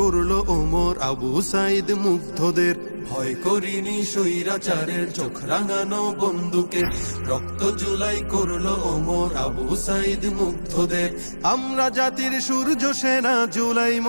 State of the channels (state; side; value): inverted; both; correlation -1.00